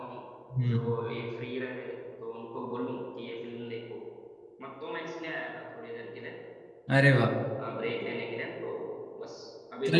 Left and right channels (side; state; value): both; identical; correlation 1.00